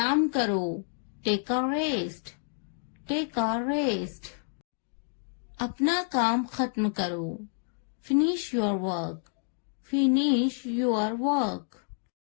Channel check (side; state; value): right; silent; 58 dB below the other